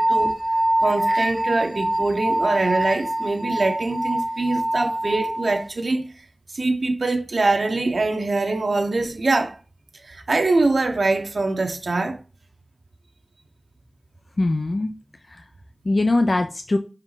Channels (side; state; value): both; normal; correlation 0.97